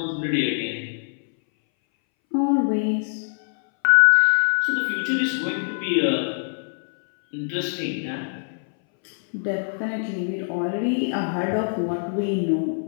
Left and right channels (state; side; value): silent; right; 62 dB below the other